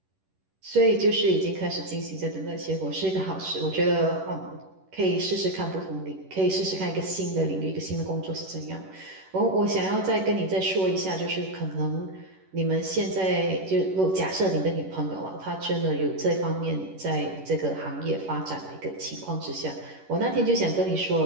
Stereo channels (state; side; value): late; left; 11 ms